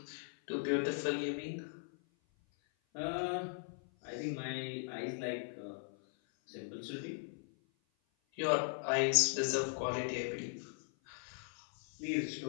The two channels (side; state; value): right; silent; 52 dB below the other